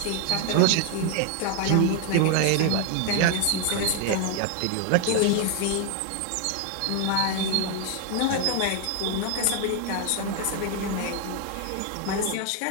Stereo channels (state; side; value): different; both; correlation 0.01